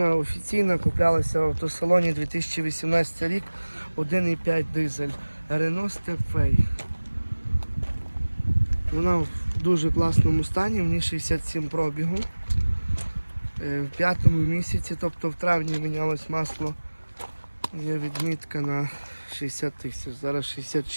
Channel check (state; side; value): inverted; both; correlation -1.00